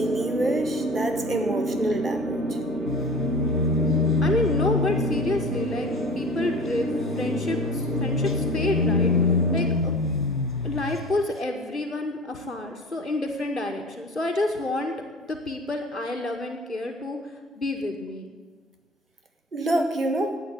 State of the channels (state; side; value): normal; both; correlation 0.41